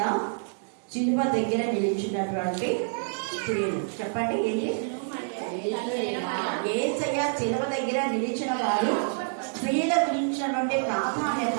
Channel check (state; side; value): silent; left; digital silence